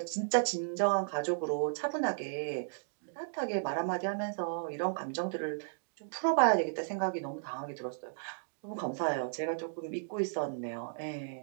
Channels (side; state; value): left; silent; digital silence